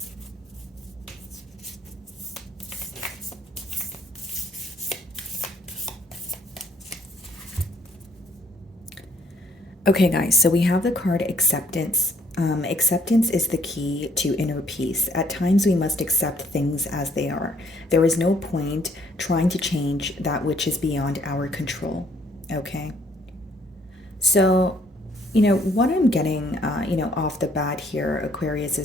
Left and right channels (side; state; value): both; normal; correlation 0.65